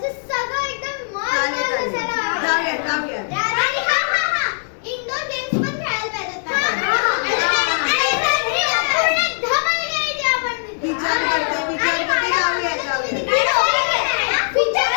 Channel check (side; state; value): right; silent; digital silence